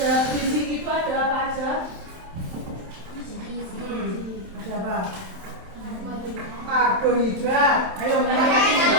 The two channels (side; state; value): left; late; 27 ms